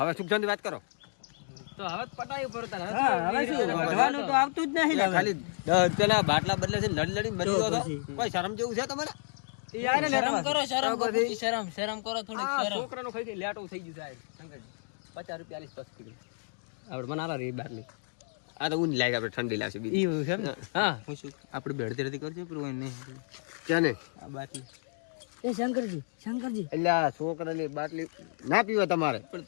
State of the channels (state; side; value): silent; right; digital silence